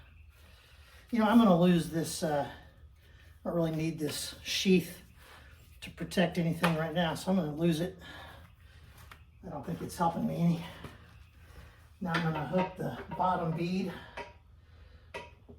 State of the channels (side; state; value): both; identical; correlation 1.00